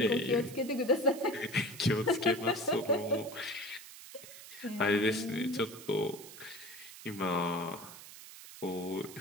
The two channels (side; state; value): right; noise; hiss, 15 dB below the sound